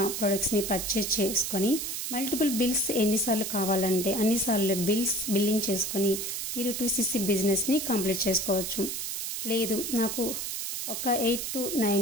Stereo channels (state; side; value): noise; right; hiss, 4 dB below the sound